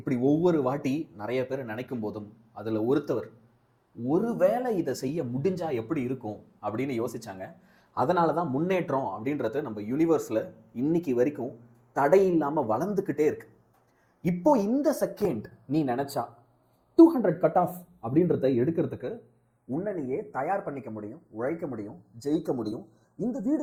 ஒவ்வொரு வாட்டி நிறைய பேர் நினைக்கும் போதும் அதில் ஒருத்தவர் ஒருவேளை இதை செய்ய முடிஞ்சா எப்படி இருக்கும் அப்படின்னு யோசிச்சாங்க. அதனால தான் முன்னேற்றம் அப்படின்றது நம்ம யூனிவர்ஸில் இன்னைக்கு வரைக்கும் தடை இல்லாமல் வளர்ந்துக்கிட்டே இருக்கு. இப்போ இந்த செகண்ட் நீ நினைச்சா 200 கட் ஆஃப் அப்படின்றத எடுக்கிறதுக்கு உன்னை நீயே தயார் பண்ணிக்க முடியும், உழைக்க முடியும், ஜெயிக்க முடியும். இந்த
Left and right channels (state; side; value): identical; both; correlation 1.00